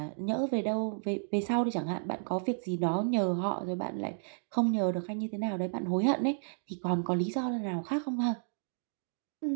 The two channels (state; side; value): silent; left; digital silence